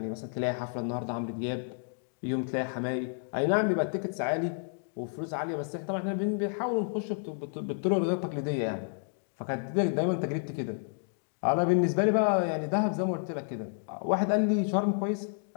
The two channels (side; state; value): right; silent; digital silence